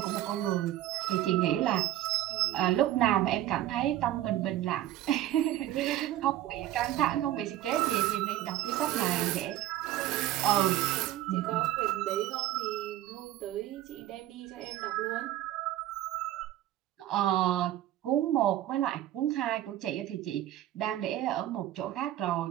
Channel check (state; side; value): quieter; left; 13.6 dB